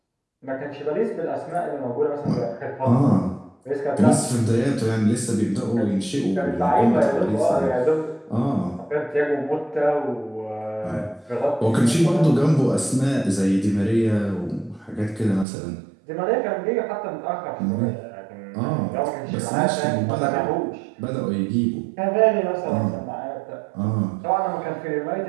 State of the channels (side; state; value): left; drops out; at 15.5 s